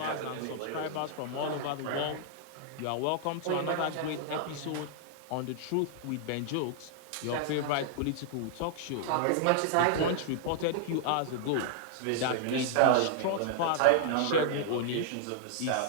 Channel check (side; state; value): both; different; correlation -0.01